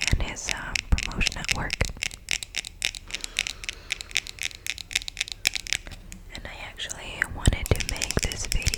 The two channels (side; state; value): both; identical; correlation 1.00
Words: and his promotion at work. And I actually wanted to make this